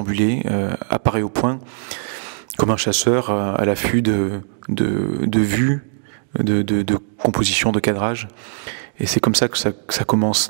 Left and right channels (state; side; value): silent; left; digital silence